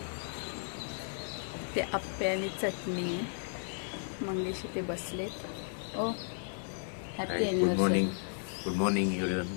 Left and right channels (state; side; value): silent; right; digital silence